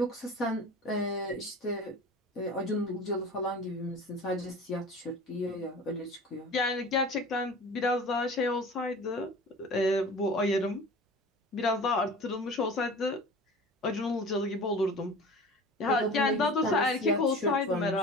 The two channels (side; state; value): both; normal; correlation 0.39